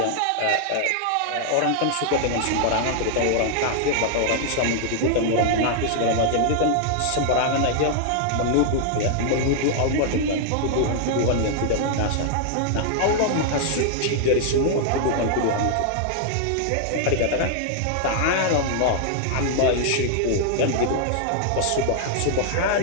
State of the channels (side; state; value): both; different; correlation -0.01